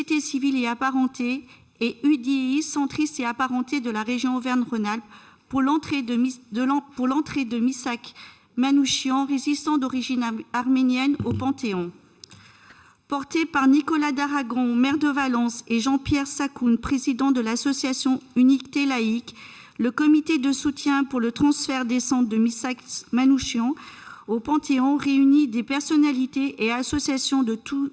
Civile et Apparentée et UDI, centristes et apparentés de la région Auvergne-Rhône-Alpes, pour l'entrée de Missak Manouchian, résistant d'origine arménienne, au Panthéon. Porté par Nicolas d'Aragon, maire de Valence, et Jean-Pierre Sakoun, président de l'association Unité laïque, le comité de soutien pour le transfert des cendres de Missak Manouchian au Panthéon réunit des personnalités et associations de tous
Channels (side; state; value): both; identical; correlation 1.00